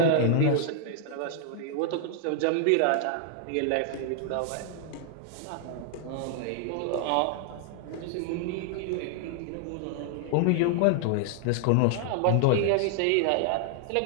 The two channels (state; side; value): different; both; correlation -0.01